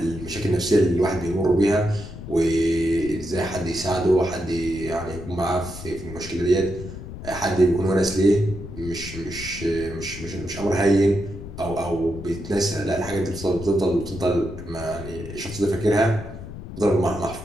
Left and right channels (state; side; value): noise; left; rumble, 11 dB below the sound